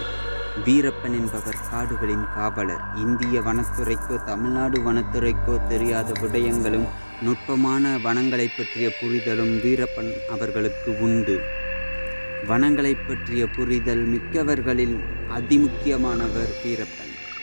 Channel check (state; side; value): inverted; both; correlation -1.00